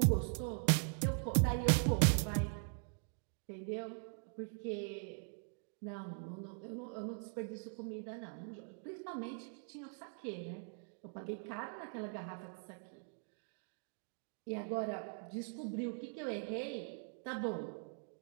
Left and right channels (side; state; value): left; silent; 50 dB below the other